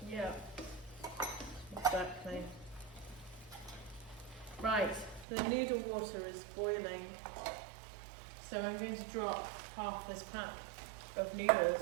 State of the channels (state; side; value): drops out; left; at 5.2 s